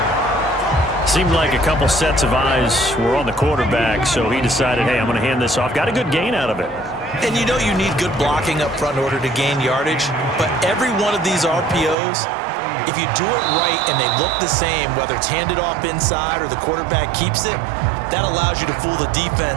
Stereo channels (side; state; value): left; drops out; at 12.0 s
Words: Seemed like a couple sets of eyes were on the quarterback, so he decided, hey, I'm going to hand this off. Got a good gain out of it. And you know you need good blocking up front in order to gain yardage, but every one of these RPOs, if you do it right and they look the same, whether it's handed off inside or the quarterback keeps it, that allows you to fool the